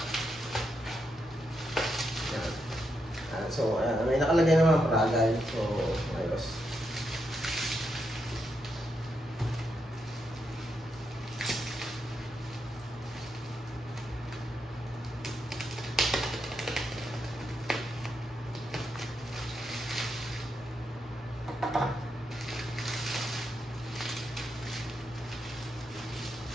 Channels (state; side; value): normal; both; correlation 0.82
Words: So, may nakalagay naman ang Pragal. So, ayos.